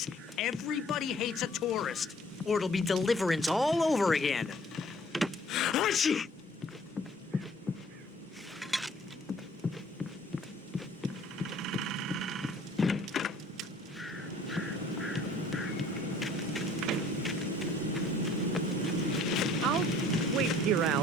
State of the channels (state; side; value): normal; both; correlation 0.55